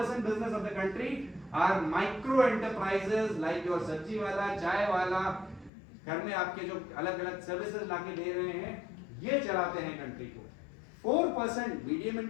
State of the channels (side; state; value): right; drops out; at 5.7 s